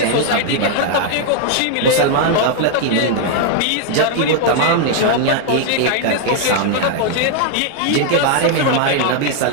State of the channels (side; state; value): both; different; correlation 0.00